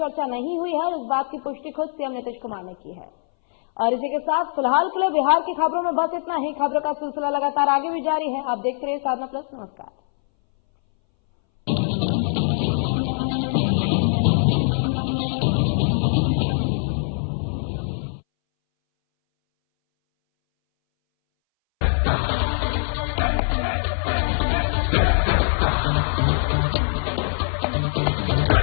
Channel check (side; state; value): right; silent; 62 dB below the other